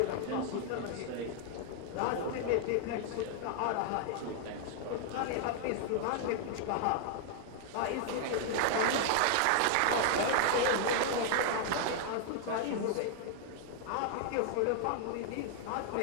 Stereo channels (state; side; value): different; both; correlation 0.00